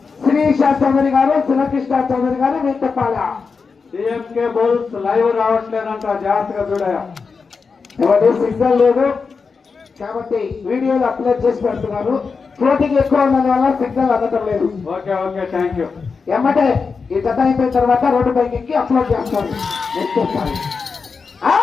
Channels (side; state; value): right; quieter; 5.0 dB